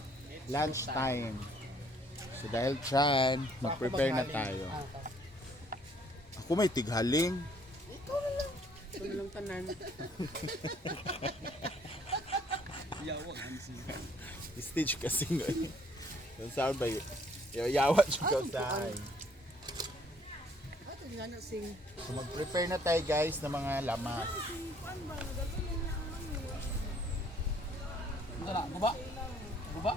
lunch time. So dahil dyan, mag-prepare na tayo. Ako may tighaling. Ikaw na lang. Ito na lang tanan. Yawag, Hansi. Stage kasi ngayon. Yung sound ba yun? Yawa siya tayo. Ato nga na sing. So mag-prepare na tayo guys ng mga lamas. Tara, guba. Guba.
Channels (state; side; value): normal; both; correlation 0.62